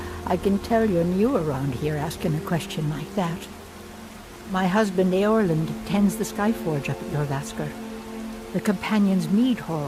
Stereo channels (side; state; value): both; identical; correlation 1.00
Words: I can tell you're new around here asking a question like that. My husband Eorlund tends the Skyforge up at Jorvaskr, the Companion's Mead